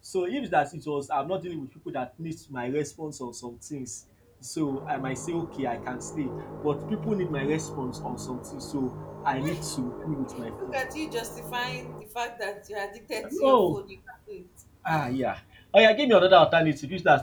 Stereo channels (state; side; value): identical; both; correlation 1.00